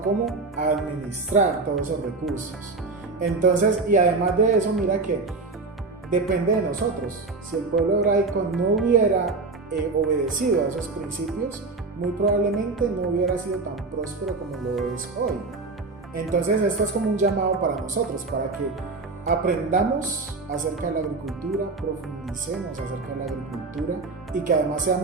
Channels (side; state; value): left; quieter; 3.8 dB